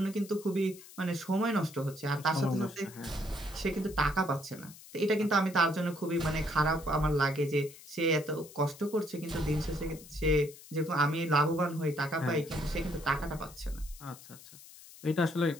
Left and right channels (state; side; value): noise; left; hiss, 19 dB below the sound